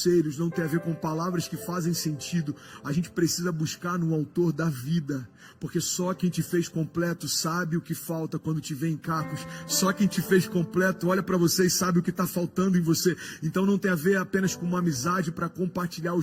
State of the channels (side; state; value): both; identical; correlation 1.00